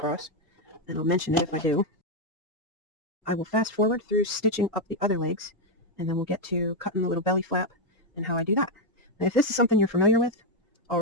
and I'll mention it if I do. I will fast forward through stitching up the other legs, and then we'll get to cutting the little belly flap and how I do that. Now, if this is something you're familiar with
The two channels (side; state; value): both; normal; correlation 0.03